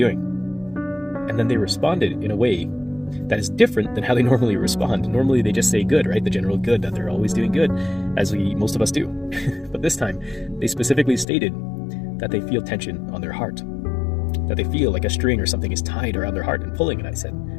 And then they responded in a way that is different than how they normally respond. Normally they just say good, right? The general good, that they're always doing good, as most of us do. But this time they specifically stated that they feel tension on their heart, that they feel like a string or something is tied around their heart and pulling. And I said,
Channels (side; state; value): right; drops out; at 11.2 s